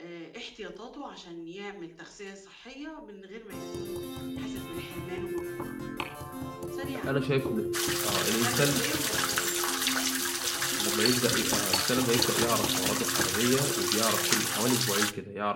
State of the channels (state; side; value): identical; both; correlation 1.00